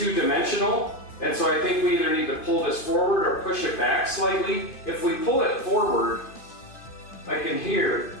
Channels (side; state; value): right; late; 2.5 ms